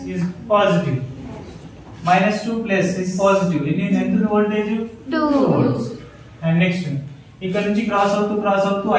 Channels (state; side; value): identical; both; correlation 1.00